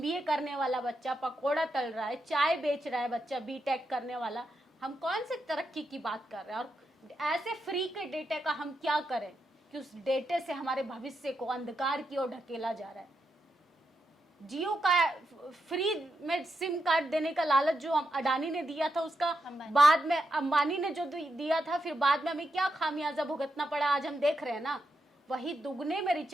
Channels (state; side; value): normal; both; correlation 0.84